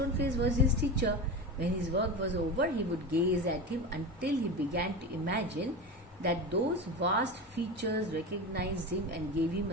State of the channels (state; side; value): normal; both; correlation 0.25